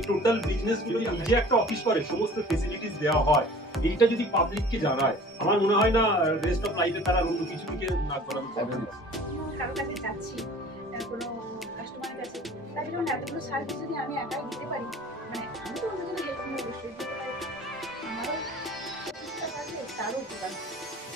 টোটাল বিজনেস গুলো নিজে একটা অফিস করে সমস্ত ফেসিলিটিস দেওয়া হয়, এইটা যদি পাবলিককে জানায়, আমার মনে হয় না রেস্ট অফ লাইফে তারা অন্য কিছু দিকে না করানো যাবে না। কারো কাছে যাচ্ছি, কোনো কাস্টমারের কাছে, তাই জন্য এতগুলো সার্ভিস যদি আমি একাই দিতে পারি, মানে আমি তো অন্যজনের হেল্প নিয়ে অবশ্যই দিতে পারি, আমারও চেষ্টা থাকলে তারও উপকার।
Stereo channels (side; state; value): both; normal; correlation 0.46